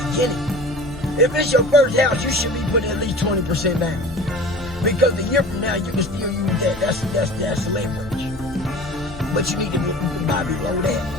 If it's your first house, you should be putting at least 20% down. Because a year from now, you can still use that. That's leverage. But you need to buy below that.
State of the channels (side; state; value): both; normal; correlation 0.40